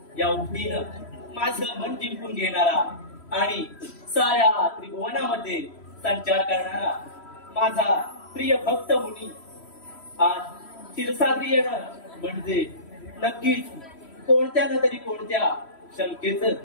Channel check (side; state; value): right; late; 3.1 ms